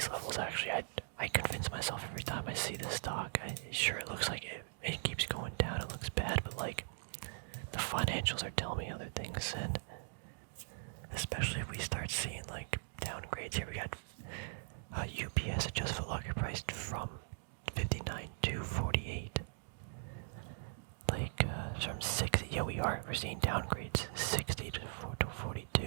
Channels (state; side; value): silent; left; digital silence